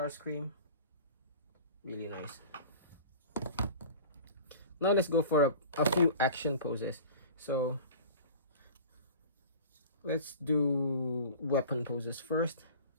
Really nice. Now let's go for a few action poses. So let's do weapon poses first.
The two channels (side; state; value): both; inverted; correlation -0.40